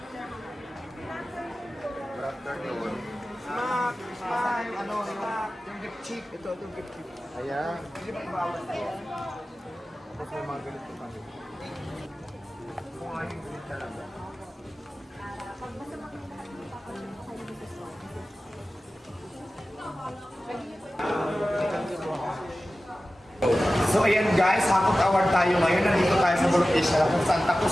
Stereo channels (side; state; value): both; normal; correlation 0.95